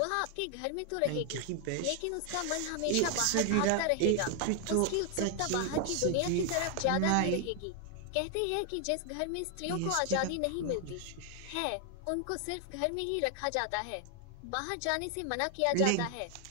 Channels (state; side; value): different; both; correlation 0.00